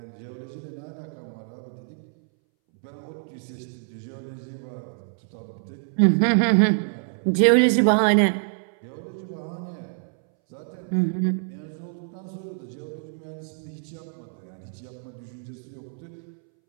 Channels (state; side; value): silent; left; 61 dB below the other